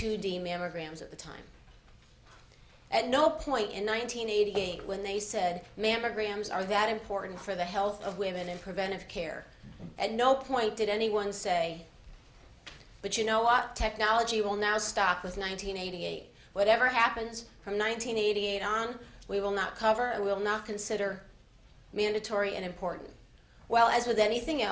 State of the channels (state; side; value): identical; both; correlation 1.00